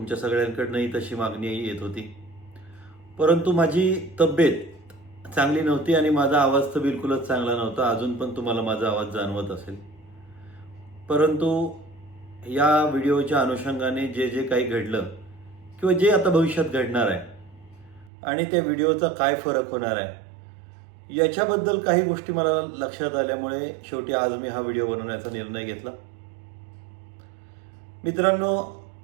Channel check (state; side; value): drops out; left; at 18.1 s